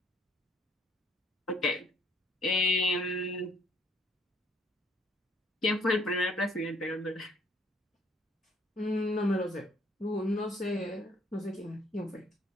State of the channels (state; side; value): normal; both; correlation 0.63